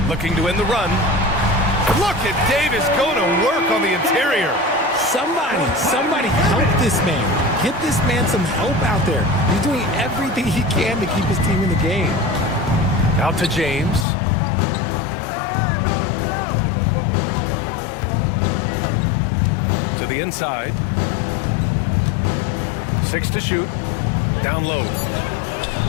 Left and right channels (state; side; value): drops out; right; at 14.1 s